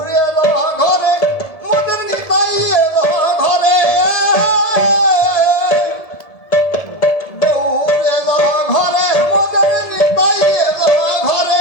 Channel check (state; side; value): late; right; 1.7 ms